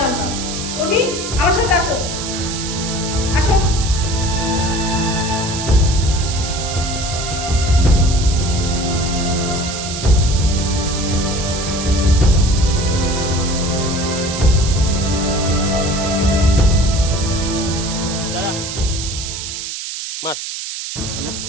উর্মি আমার সাথে আসো, আসো। দাঁড়া মার।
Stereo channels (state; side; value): noise; right; hiss, 6 dB below the sound